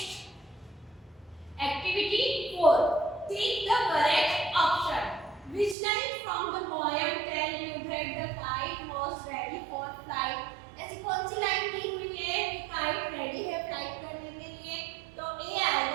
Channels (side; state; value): left; drops out; at 5.8 s